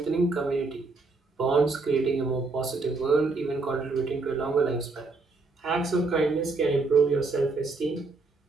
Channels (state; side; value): quieter; left; 3.7 dB